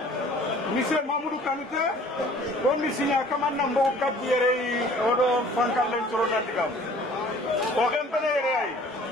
Monsieur Mamoudou Kanute, comme Monsieur Nyakaman Nambo Kabiere, Odo Frankalen Soronandigam. Au Rempene,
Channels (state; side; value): normal; both; correlation 0.51